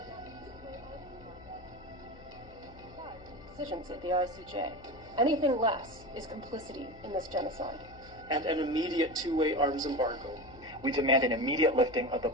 Decisions at the ICJ. Anything less is complicity in this genocide. And an immediate two-way arms embargo. We demand an immediate lifting of the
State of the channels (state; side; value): noise; left; hum, 20 dB below the sound